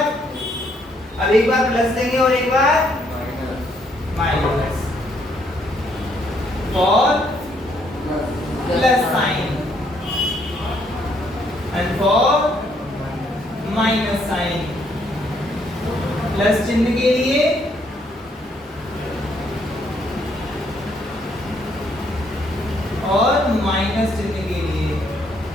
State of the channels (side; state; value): both; normal; correlation 0.70